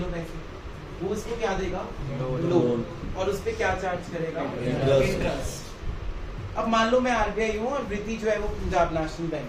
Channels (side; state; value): both; identical; correlation 1.00